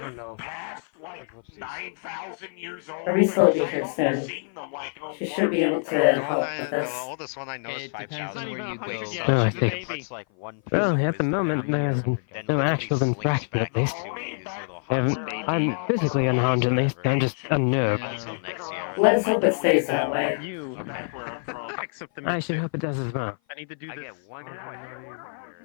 know. past like 9,000 years old. Hurry will be here soon. Seen them, like, She should be able to help with The this. oldest one I know is It depends 5,000. on where you go. Oh, I see. It's like one piece Well, of at the wisdom moment, that there's then no literally actual slinks interaction back at least. into his little I'm physically unharmed at least. I'm just unnerved. Until next year. Let's hope it stays that way. You. Except the I should hope it does as well. I need to do I this. get one question.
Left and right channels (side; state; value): right; silent; 56 dB below the other